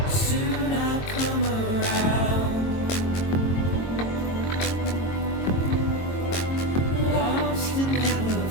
Soon I'll come around. Lost and never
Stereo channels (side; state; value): right; late; 22 ms